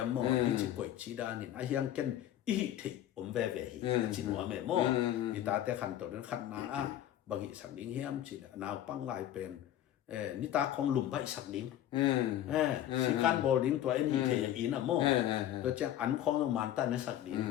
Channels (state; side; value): quieter; right; 12.1 dB